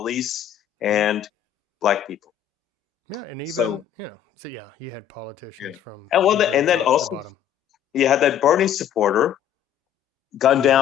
and black people. Yeah, and even you had politicians from and then the also bottom. You had that Bernie supporter gunned Yeah.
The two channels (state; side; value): quieter; right; 10.0 dB